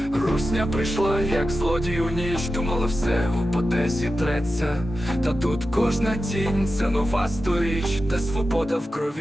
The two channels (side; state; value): both; normal; correlation 0.92